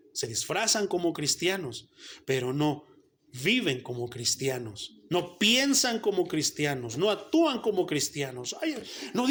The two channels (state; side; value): identical; both; correlation 1.00